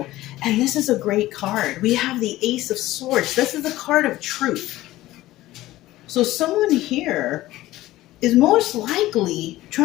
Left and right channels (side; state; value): right; quieter; 16.4 dB